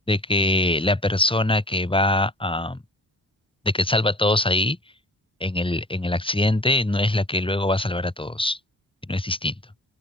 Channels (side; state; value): both; normal; correlation 0.45